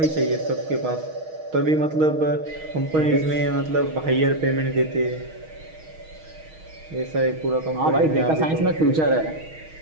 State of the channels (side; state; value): left; late; 6.3 ms